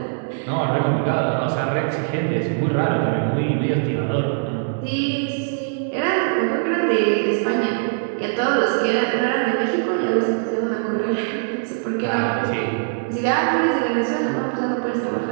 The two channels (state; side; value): silent; left; digital silence